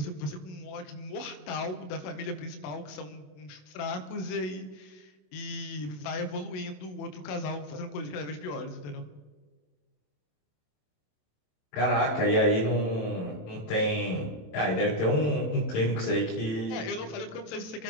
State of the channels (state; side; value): late; right; 27 ms